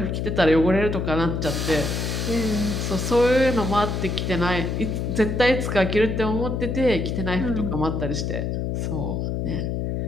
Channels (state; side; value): noise; left; hum, 1 dB below the sound